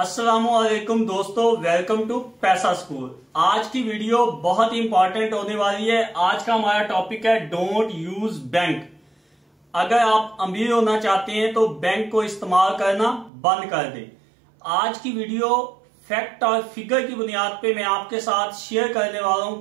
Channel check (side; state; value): left; drops out; at 13.3 s